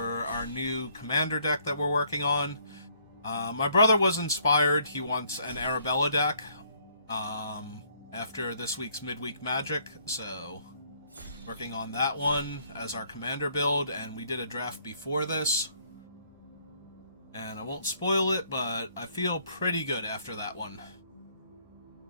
our new commander deck that we're working on. My brother was inspired. He wants an Arabella deck after this week's midweek magic, so working on that one as our commander build, and we did a draft before this. And I won't spoil it, but I feel pretty good after that one.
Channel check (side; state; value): both; inverted; correlation -0.66